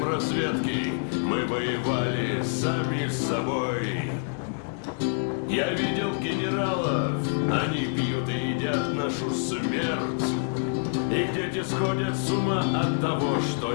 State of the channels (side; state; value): right; silent; digital silence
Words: разведки мы воевали сами с собой. Я видел генералов, они пьют и едят нашу смерть. Их дети сходят с ума от того, что